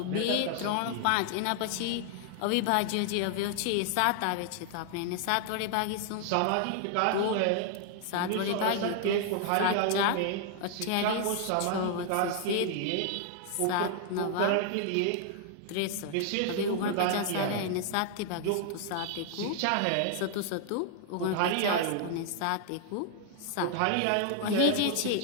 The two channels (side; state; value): both; different; correlation 0.00